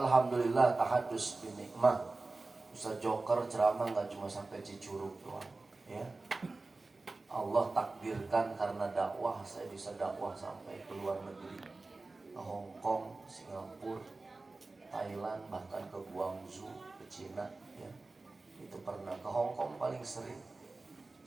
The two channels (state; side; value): quieter; left; 3.4 dB